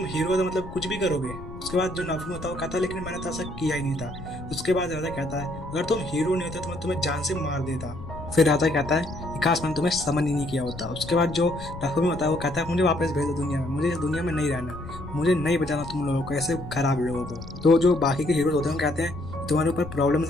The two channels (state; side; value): noise; left; rumble, 13 dB below the sound